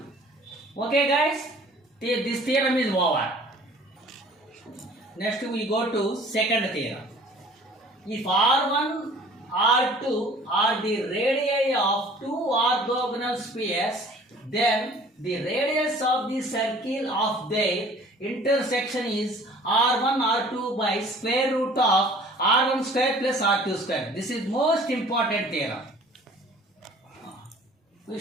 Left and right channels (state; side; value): normal; both; correlation 0.50